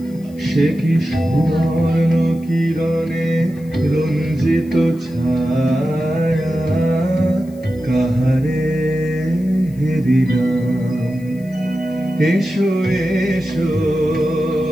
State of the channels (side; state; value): left; noise; hiss, 28 dB below the sound